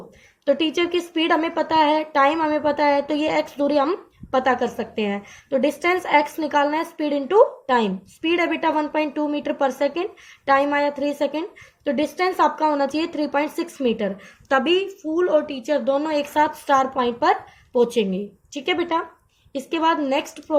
टीचर की स्पीड हमें पता है, टाइम हमें पता है, तो ये एक्स दूरी हम पता कर सकते हैं। तो डिस्टेंस एक्स निकालना है, स्पीड इनटू टाइम। स्पीड है बेटा 1.2 मीटर पर सेकेंड, टाइम आया 3 सेकेंड, तो डिस्टेंस आपका होना चाहिए 3.6 मीटर, तभी फूल और टीचर दोनों एक साथ स्टार पॉइंट पर पहुंचेंगे। ठीक है बेटा, इसके बाद नेक्स्ट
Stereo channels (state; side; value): identical; both; correlation 1.00